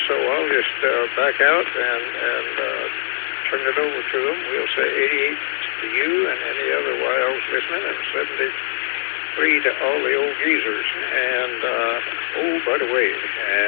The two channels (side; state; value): right; silent; 64 dB below the other